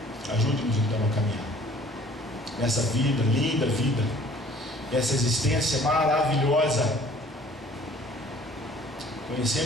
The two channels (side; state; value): both; normal; correlation 0.53